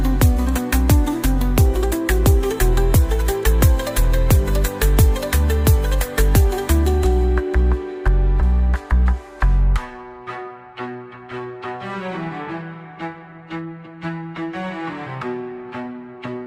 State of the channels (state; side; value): identical; both; correlation 1.00